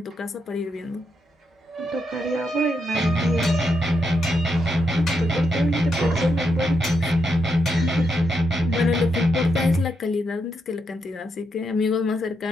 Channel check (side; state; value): both; normal; correlation 0.82